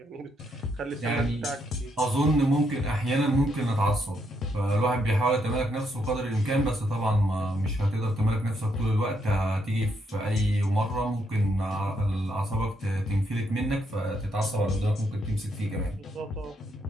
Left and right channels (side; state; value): both; normal; correlation 0.76